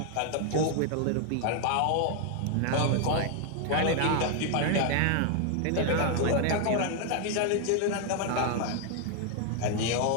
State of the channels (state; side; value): different; both; correlation 0.00